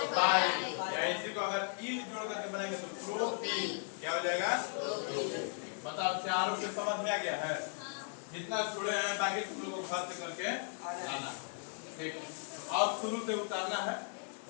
पाई या इसी को अगर ई जोड़ करके बनाएंगे तो प्रो पी क्या हो जाएगा बताओ चारों पे समझ में आ गया है जितना छोड़े हैं बाकी तुम लोगों को घर से करके आना ठीक है और शुरू से उतारना है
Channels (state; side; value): silent; right; 53 dB below the other